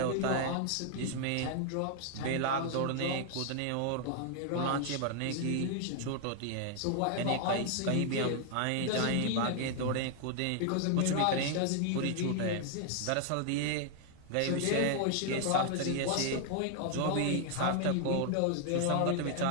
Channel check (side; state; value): both; different; correlation 0.00